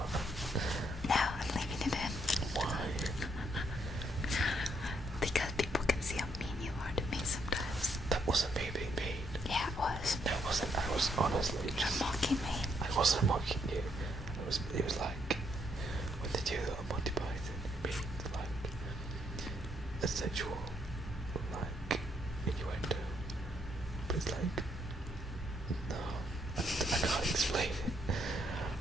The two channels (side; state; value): both; normal; correlation 0.73